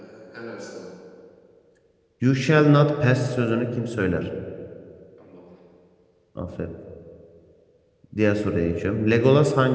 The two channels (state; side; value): identical; both; correlation 1.00